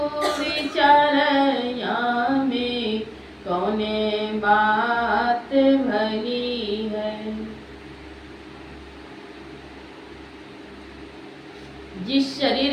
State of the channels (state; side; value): identical; both; correlation 1.00